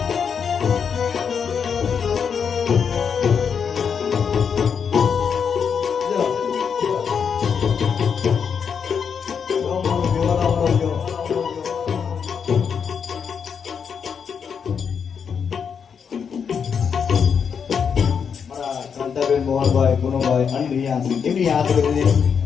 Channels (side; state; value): right; quieter; 6.7 dB